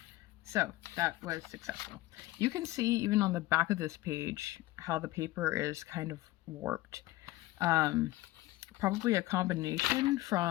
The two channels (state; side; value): quieter; right; 17.7 dB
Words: So that was successful. You can see even on the back of this page how the paper is kind of warped. Probably a combination